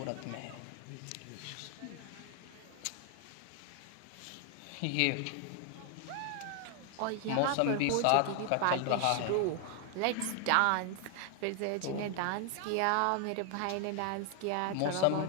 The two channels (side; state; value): both; different; correlation 0.00